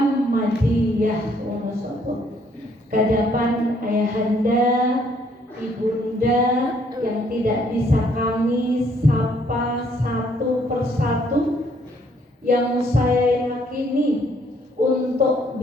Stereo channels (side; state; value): both; normal; correlation 0.66